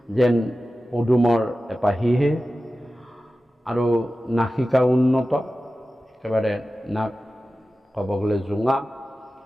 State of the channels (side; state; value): both; normal; correlation 0.95